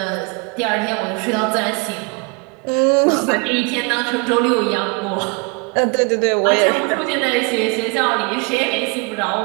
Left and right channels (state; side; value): quieter; left; 31.6 dB